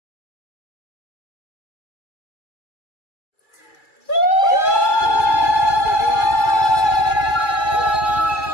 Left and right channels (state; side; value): late; right; 2.3 ms